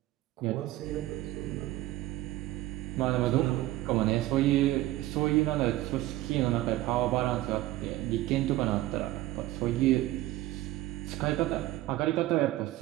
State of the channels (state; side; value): quieter; left; 16.3 dB